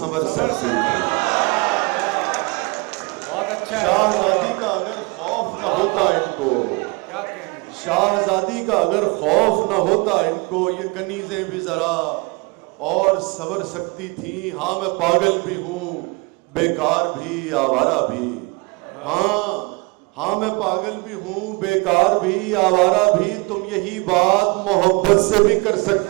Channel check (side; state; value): left; quieter; 28.3 dB